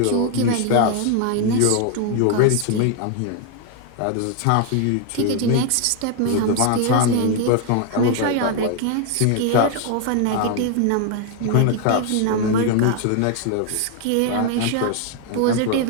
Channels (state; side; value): different; both; correlation 0.00